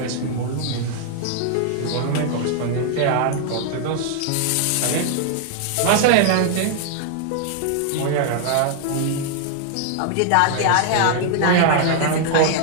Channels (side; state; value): both; different; correlation 0.00